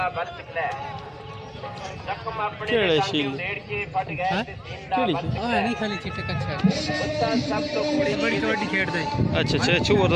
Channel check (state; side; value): identical; both; correlation 1.00